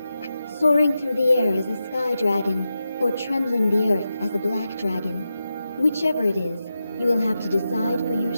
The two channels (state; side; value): inverted; both; correlation -0.90